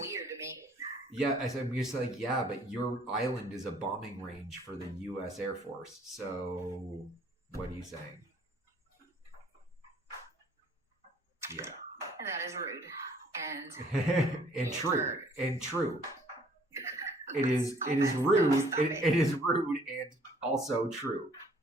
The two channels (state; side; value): normal; both; correlation 0.59